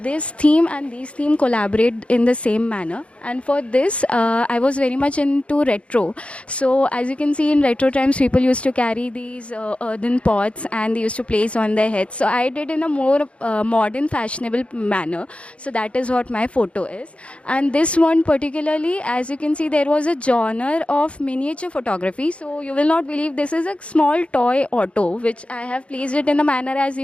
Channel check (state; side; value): late; right; 0.061 ms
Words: this theme and these theme collaborate in the same manner. And for this, I was very much into retro. So as you can see, in retro times, people used to carry these earthen pots and they used to place on their heads. So I did in a more modern, fashionable manner. So that is what my photo is. And this one particularly, as you can see, there was a genre of miniature photography. So you will not believe, this is a small toy auto, which I have placed it in a manner as